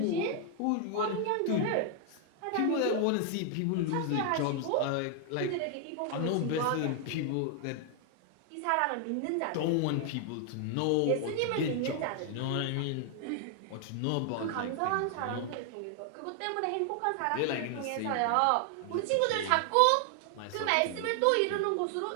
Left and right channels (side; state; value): both; different; correlation 0.00